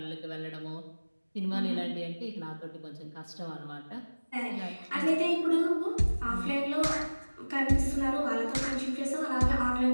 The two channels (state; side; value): inverted; both; correlation -1.00